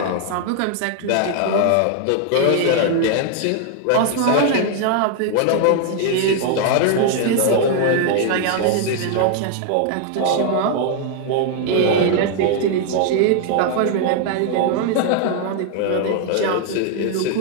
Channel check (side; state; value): both; different; correlation 0.00